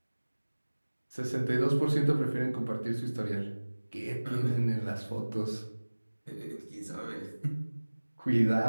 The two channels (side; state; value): both; inverted; correlation -1.00